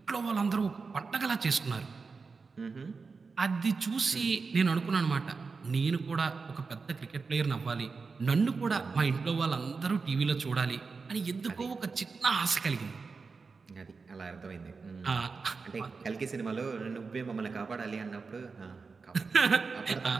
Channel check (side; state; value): left; quieter; 4.7 dB